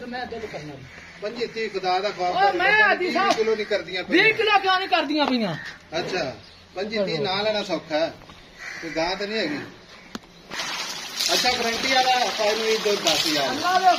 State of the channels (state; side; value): identical; both; correlation 1.00